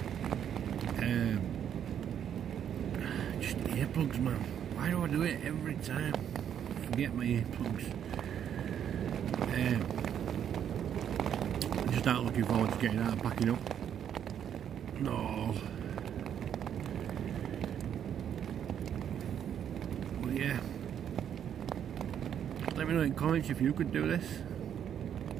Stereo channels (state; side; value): quieter; left; 9.2 dB